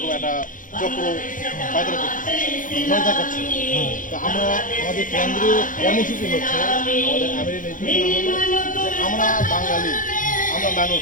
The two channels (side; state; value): right; late; 0.38 ms